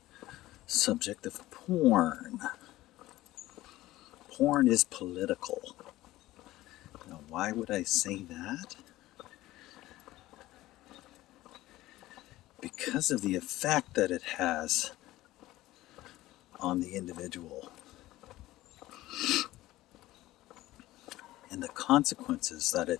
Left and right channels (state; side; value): quieter; right; 16.7 dB